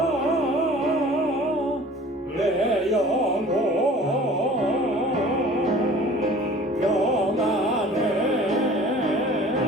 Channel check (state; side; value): normal; both; correlation 0.47